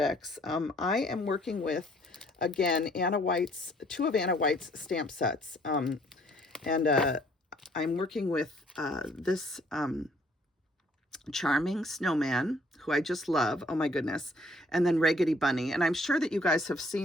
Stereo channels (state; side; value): normal; both; correlation 0.62